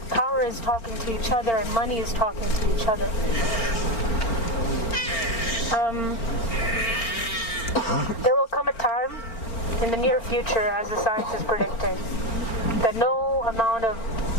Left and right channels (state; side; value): late; right; 4.4 ms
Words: power is talking to each other and money is talking to each other. There will come a time in the near future, as the science is predicting, that no amount of